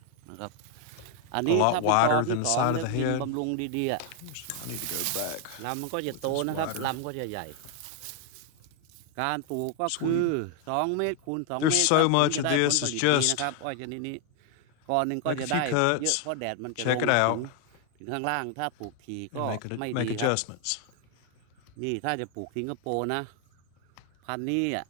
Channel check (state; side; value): different; both; correlation 0.00